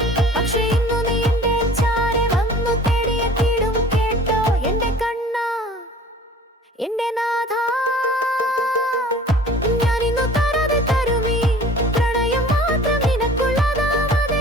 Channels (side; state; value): both; normal; correlation 0.47